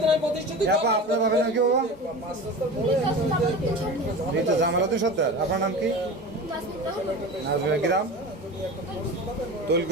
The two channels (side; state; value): both; normal; correlation 0.32